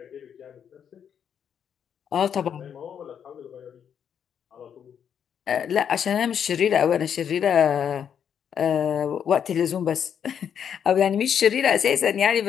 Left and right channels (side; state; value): right; quieter; 8.2 dB